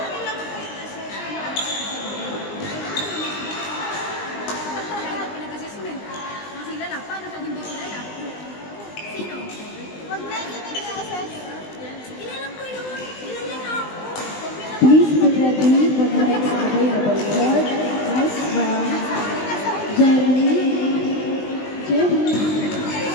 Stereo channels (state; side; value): late; right; 20 ms